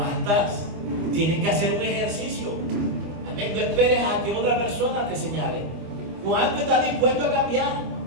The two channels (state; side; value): late; left; 25 ms